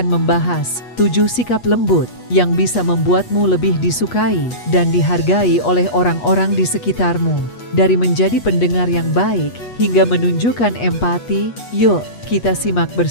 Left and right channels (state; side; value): late; right; 8.3 ms